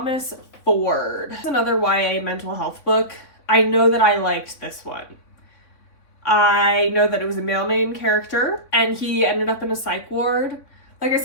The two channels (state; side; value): late; right; 3.6 ms